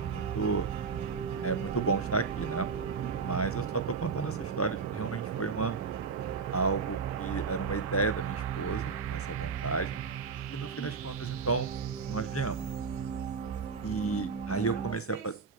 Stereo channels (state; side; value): quieter; left; 4.9 dB